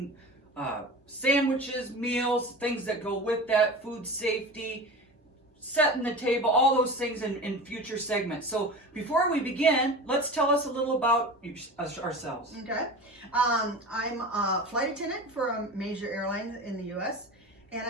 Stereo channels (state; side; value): normal; both; correlation 0.32